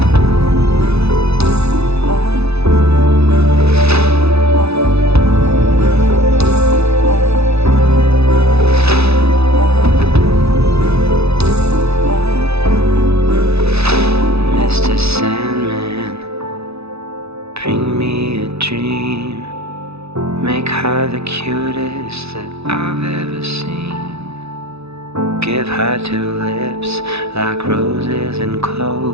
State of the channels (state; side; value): late; left; 0.79 ms